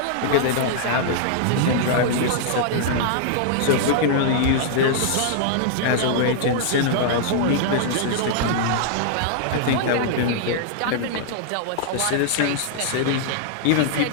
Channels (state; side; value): different; both; correlation -0.01